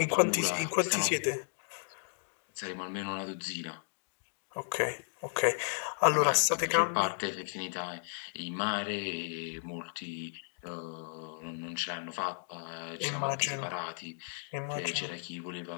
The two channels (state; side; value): silent; right; digital silence